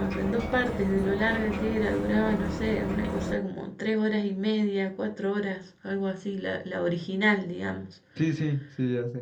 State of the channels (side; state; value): both; identical; correlation 1.00